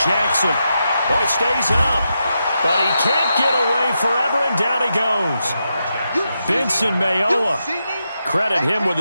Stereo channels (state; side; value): inverted; both; correlation -0.86